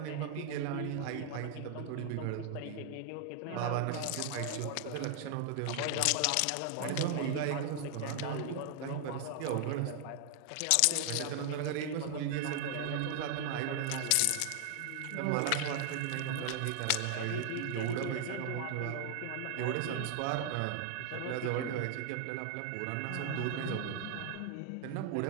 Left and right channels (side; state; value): both; different; correlation 0.00